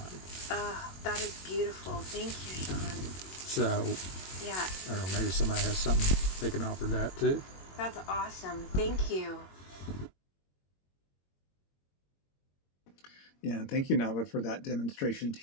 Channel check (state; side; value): late; right; 21 ms